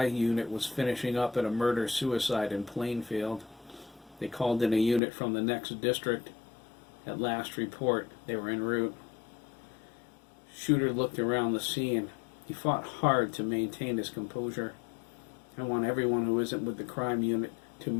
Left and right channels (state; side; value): drops out; right; at 5.0 s